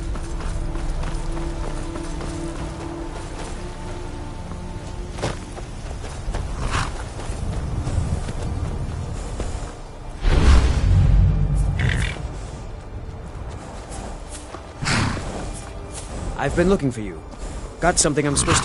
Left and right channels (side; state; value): both; identical; correlation 1.00